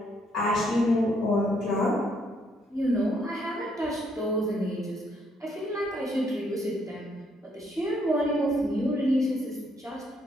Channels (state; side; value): normal; both; correlation 0.71